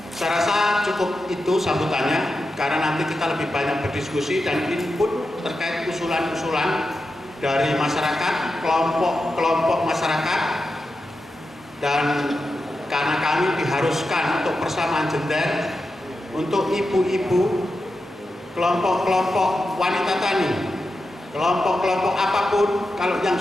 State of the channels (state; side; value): normal; both; correlation 0.90